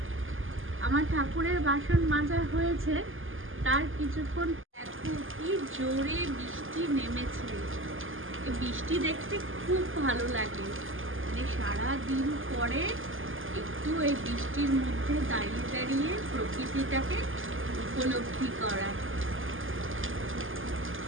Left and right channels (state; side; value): late; left; 0.58 ms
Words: আমার ঠাকুরের বাসন মাজা হয়েছে, তার কিছুক্ষণ দেখো কি জোরে বৃষ্টি নেমেছে। এই বৃষ্টি দেখতে খুব ভালো লাগে, মানে সারাদিন পরে একটু এই বৃষ্টির মধ্যে দাঁড়িয়ে দাঁড়িয়ে প্রকৃতিটাকে উপলব্ধি করা।